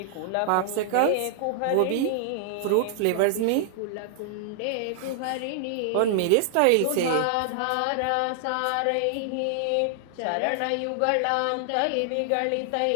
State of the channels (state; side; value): different; both; correlation -0.01